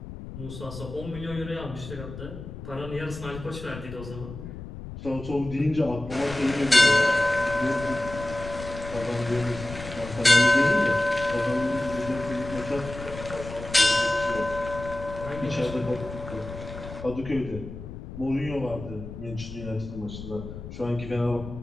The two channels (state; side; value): noise; left; rumble, 11 dB below the sound